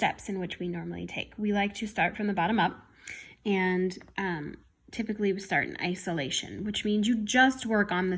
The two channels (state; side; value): identical; both; correlation 1.00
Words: in which we normally take. We like to start from the bottom up, and typically we start in isolation, which means you just work on the